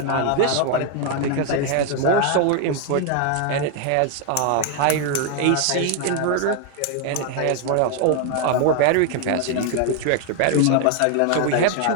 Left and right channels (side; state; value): both; different; correlation 0.01